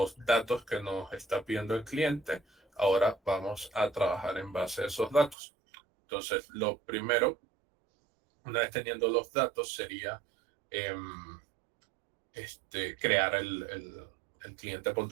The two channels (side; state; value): left; drops out; at 5.4 s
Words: datos que nos está pidiendo el cliente. Ahora vamos a trabajar en base a esos datos. Entonces, lo primero, una vez teniendo los datos, sería crear el cliente